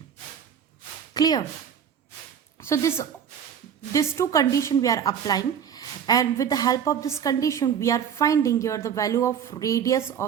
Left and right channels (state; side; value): quieter; left; 8.2 dB